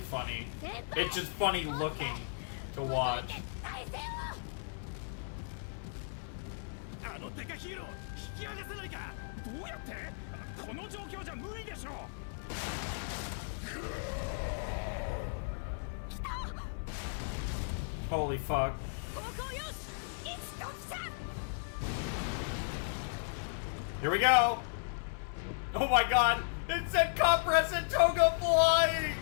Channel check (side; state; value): right; silent; 54 dB below the other